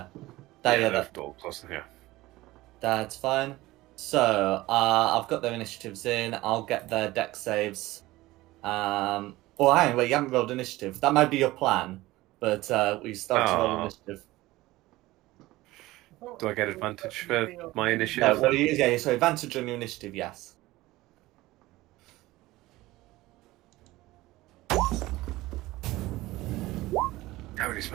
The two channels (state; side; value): quieter; left; 18.5 dB